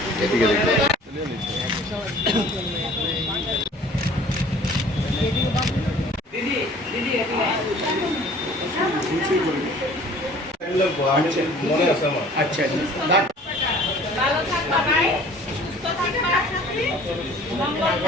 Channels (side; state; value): both; normal; correlation 0.50